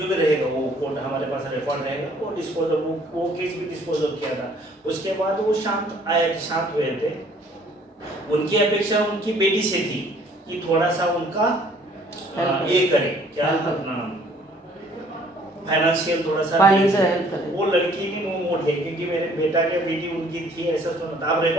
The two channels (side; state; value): both; normal; correlation 0.59